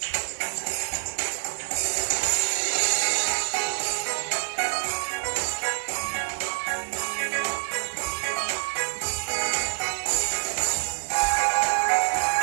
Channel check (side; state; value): left; silent; digital silence